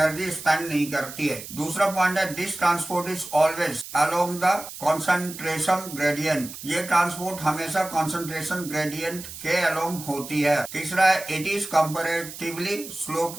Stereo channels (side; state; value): right; noise; hiss, 12 dB below the sound